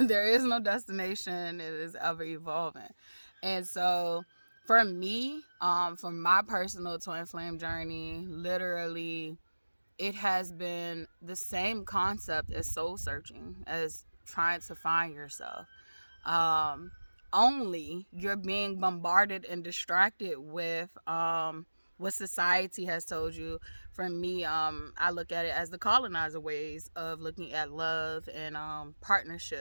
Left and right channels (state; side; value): inverted; both; correlation -1.00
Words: is no destination. It is ever evolving. And so for me, for my personal twin flame journey, literally, it has been the same concept as soul searching, as trying to find yourself. Only you're being bombarded and distracted with what society has told you. For me, I look at it as the colonizer ways of looking at love and